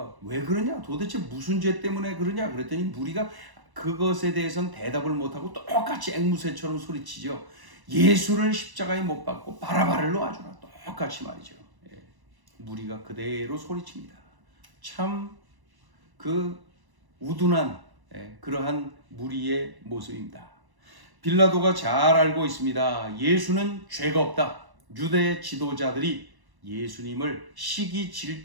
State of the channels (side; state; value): left; late; 1.1 ms